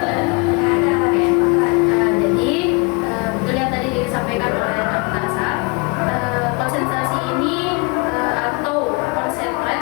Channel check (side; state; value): right; quieter; 30.7 dB